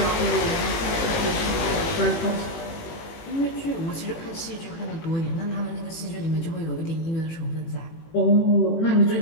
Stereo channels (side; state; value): right; late; 18 ms